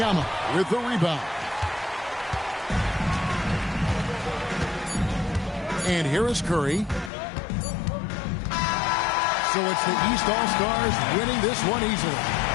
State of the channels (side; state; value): right; drops out; at 7.1 s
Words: with the rebound. And here is Curry. So it's the East All-Stars winning this one easily.